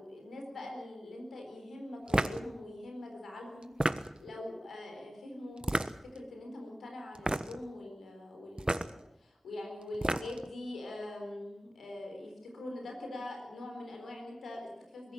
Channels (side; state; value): both; normal; correlation 0.95